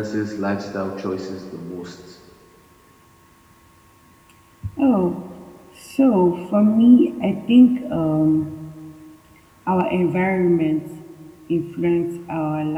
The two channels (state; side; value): identical; both; correlation 1.00